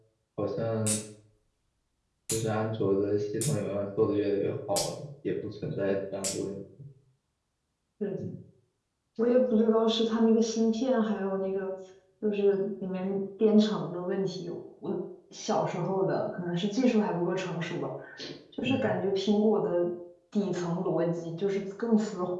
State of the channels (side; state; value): both; identical; correlation 1.00